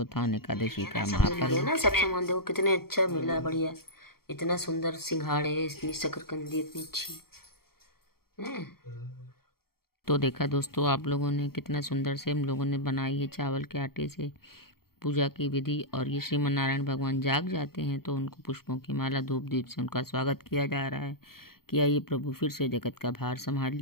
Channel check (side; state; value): right; late; 0.94 ms